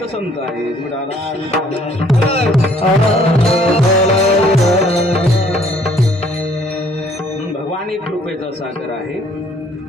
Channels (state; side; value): normal; both; correlation 0.61